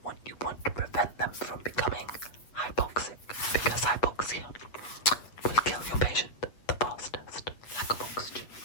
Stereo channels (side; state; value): right; late; 7.8 ms